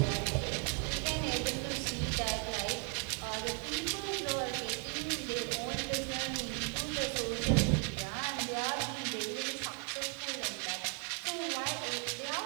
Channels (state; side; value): quieter; left; 38.3 dB